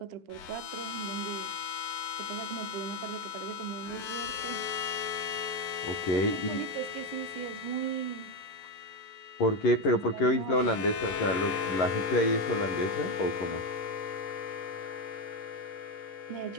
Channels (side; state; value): right; late; 11 ms